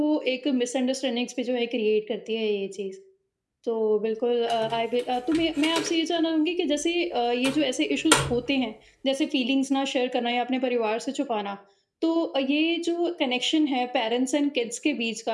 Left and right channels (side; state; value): both; identical; correlation 1.00